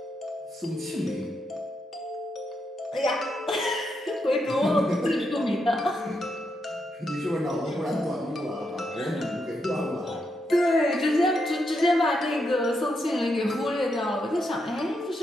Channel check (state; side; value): normal; both; correlation 0.82